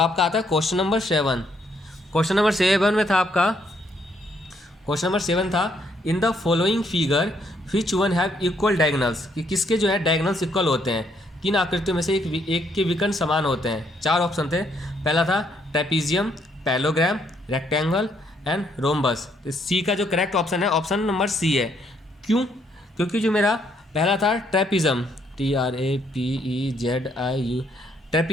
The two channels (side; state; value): both; normal; correlation 0.71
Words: आता है क्वेश्चन नंबर 7। क्वेश्चन नंबर 7 में था आपका, क्वेश्चन नंबर 7 था in the following figure which one have equal diagonals, कि किसके जो है डायगोनल्स इक्वल होते हैं, किन आकृतियों में से एक के विकर्ण समान होते हैं। 4 ऑप्शन थे। पहला था trapezium, parallelogram, rectangle and rhombus. तो सी का जो करेक्ट ऑप्शन है ऑप्शन नंबर सी है। क्यों? क्योंकि जो मेरा पहला था ट्रेपीजियम, TRAPEZIU।